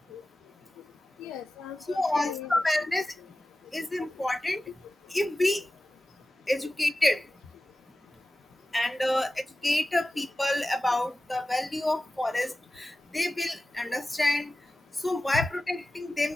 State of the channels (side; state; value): both; normal; correlation 0.95